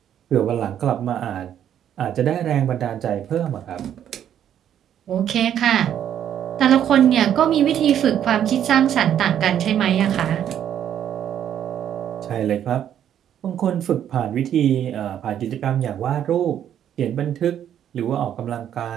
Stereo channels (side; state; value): left; quieter; 10.0 dB